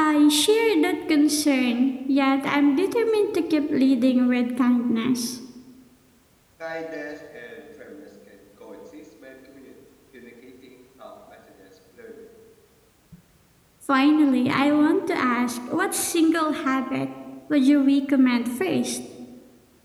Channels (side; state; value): both; identical; correlation 1.00